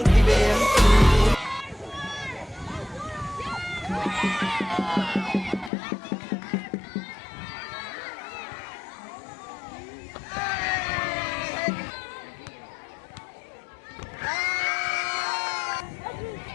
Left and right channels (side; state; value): right; drops out; at 5.7 s